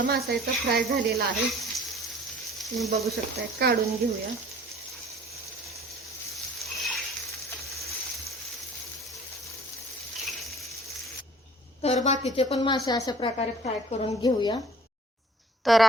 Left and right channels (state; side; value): normal; both; correlation 0.50